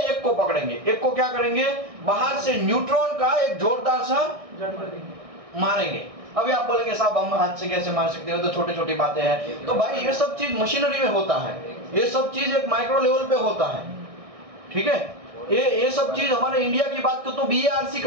को पकड़ेंगे, एक को क्या करेंगे? बाहर से न्यूट्रॉन का एक जोरदार सा मारेंगे। अभी आप बोलेंगे साहब हम हाथ से कैसे मार सकते हो, तो छोटी छोटी बातें हैं। तो भाई ये सब चीज मशीनरी में होता है, ये सब चीज एक माइक्रो लेवल पे होता है, ठीक है? ये सब चीज हमारे इंडिया की बात तो BARC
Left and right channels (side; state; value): left; late; 1.6 ms